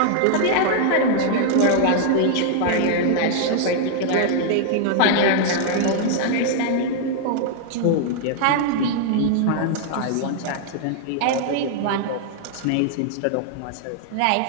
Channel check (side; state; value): both; different; correlation -0.01